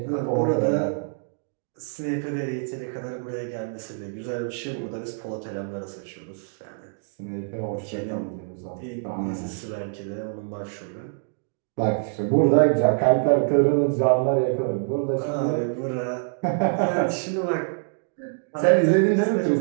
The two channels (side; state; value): left; silent; digital silence